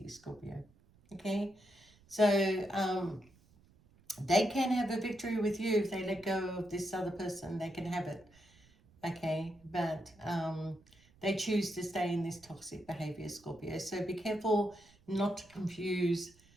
Scorpio. Okay? So, they can have a victory with you if they let go of this other person. They can have it. Okay? But, they choose to stay in this toxic behavior, Scorpio. So be careful not to confuse,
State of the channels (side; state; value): right; noise; rumble, 28 dB below the sound